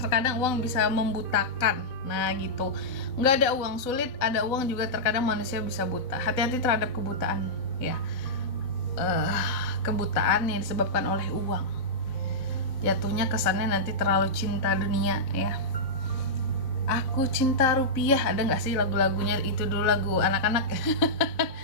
terkadang uang bisa membutakan. Nah gitu, nggak ada uang sulit, ada uang juga terkadang manusia bisa buta. Hati-hati terhadap kebutaan ya, kebutaan yang disebabkan oleh uang. Jatuhnya kesannya nanti terlalu cinta dunia ya. Aku cinta rupiah, ada nggak sih lagu-lagunya itu dulu, lagu anak-anak.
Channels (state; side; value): late; right; 4.0 ms